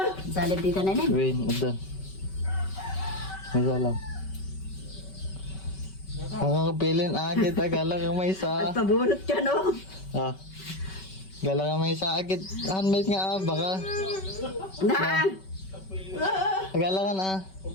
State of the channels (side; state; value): right; late; 5.3 ms